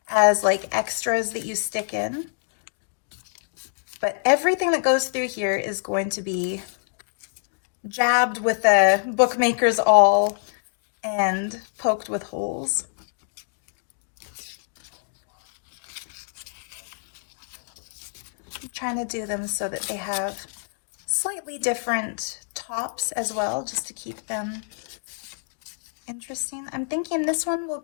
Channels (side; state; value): right; silent; digital silence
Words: as like extras that you stick in. But everything that goes through here is going to be jabbed with a bookmaker's awl and poked with holes. I'm trying to do them so that they have slightly different tops as well, just to keep them interesting. I'm thinking this one will